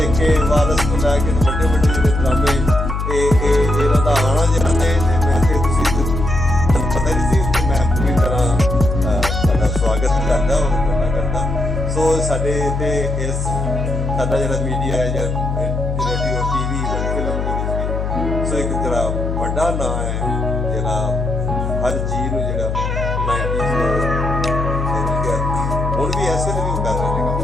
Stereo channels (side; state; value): left; noise; hum, 2 dB below the sound